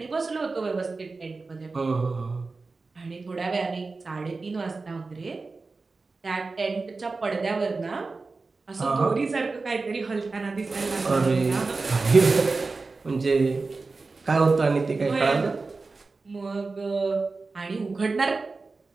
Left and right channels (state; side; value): quieter; left; 3.9 dB